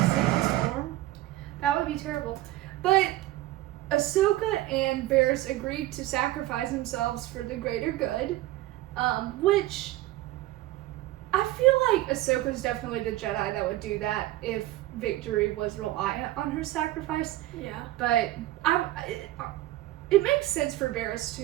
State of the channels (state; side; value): quieter; left; 16.1 dB